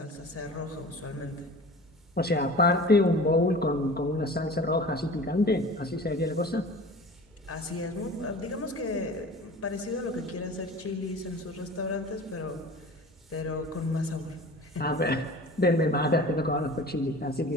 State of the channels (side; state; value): both; normal; correlation 0.40